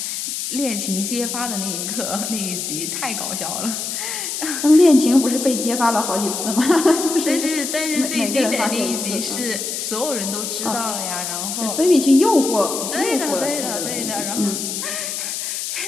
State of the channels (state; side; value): noise; left; hiss, 4 dB below the sound